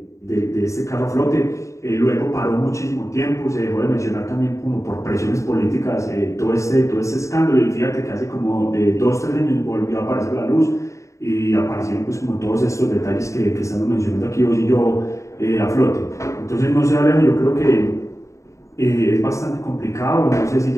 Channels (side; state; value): right; late; 0.15 ms